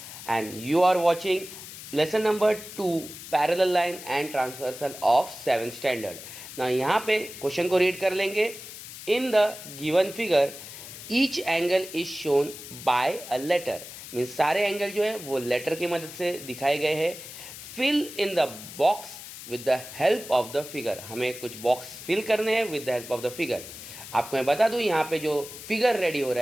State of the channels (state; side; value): noise; left; hiss, 13 dB below the sound